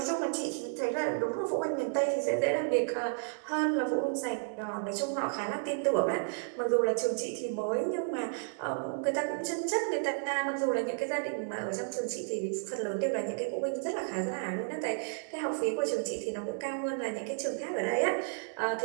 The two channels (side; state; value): left; silent; digital silence